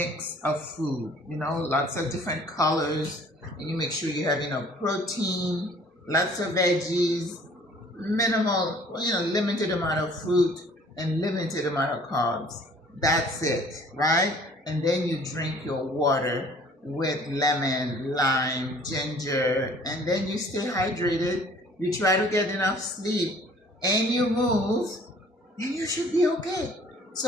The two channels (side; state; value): both; normal; correlation 0.54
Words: of food, lots of different colors, and you make sure you have enough protein, lots of veggies, minimal, limited amount of fruit, and limited amount of carbs. That's it, right? And then you drink your water with lemon, lime, ginger, and then you stay hydrated. You try to get enough sleep, and you move, and you should be okay.